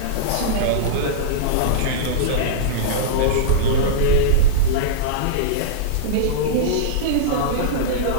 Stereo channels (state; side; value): different; both; correlation -0.03